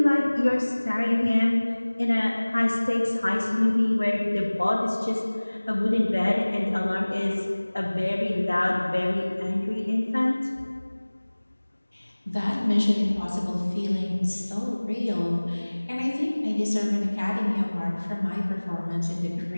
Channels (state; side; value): inverted; both; correlation -1.00